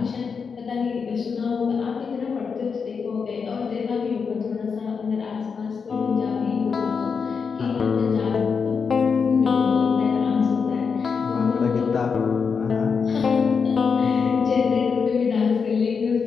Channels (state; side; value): quieter; right; 5.7 dB